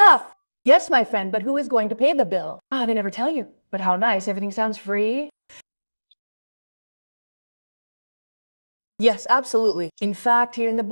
Yes, my friend, but who is going to pay the bill? Ah, they never tell you. But how nice, everything sounds free. Yes, absolutely. In fact, here in the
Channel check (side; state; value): both; inverted; correlation -1.00